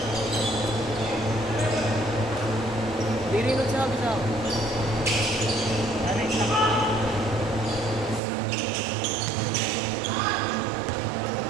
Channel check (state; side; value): drops out; left; at 8.2 s